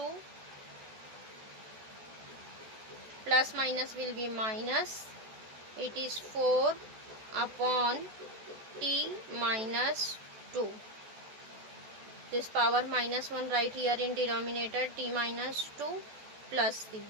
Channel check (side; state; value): left; late; 14 ms